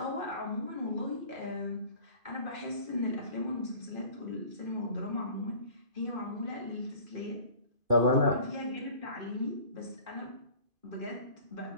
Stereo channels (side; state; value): left; late; 2.5 ms